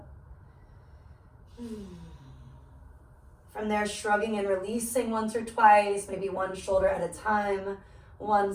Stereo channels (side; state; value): both; identical; correlation 1.00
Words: From there, shrugging and releasing once or twice, maybe one shoulder at a time,